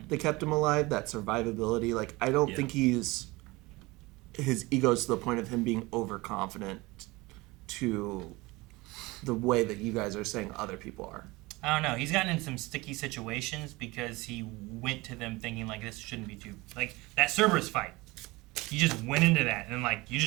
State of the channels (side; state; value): left; quieter; 22.3 dB